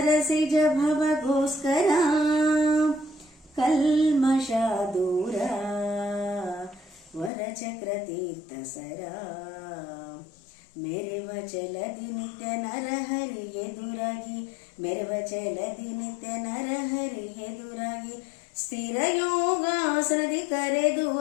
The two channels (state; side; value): drops out; right; at 7.3 s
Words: ಭವಗೋಸ್ಕರ ಕಲ್ಮಷ ದೂರ, ವರಚಕ್ರ ತೀರ್ಥ ಸರ. ಮೆರೆವ ಚಲದಿ ನಿತ್ಯ ನರಹರಿ ಎದುರಾಗಿ, ಮೆರೆವ ಚಲದಿ ನಿತ್ಯ ನರಹರಿ ಎದುರಾಗಿ, ಸ್ಥಿರ ಯೋಗಾಸನದಿ ಕರೆದು